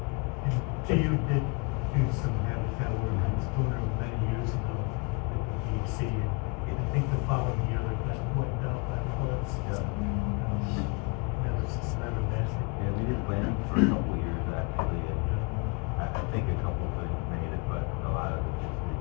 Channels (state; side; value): quieter; right; 31.0 dB